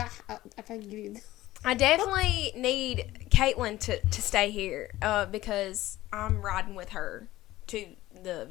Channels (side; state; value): right; quieter; 16.3 dB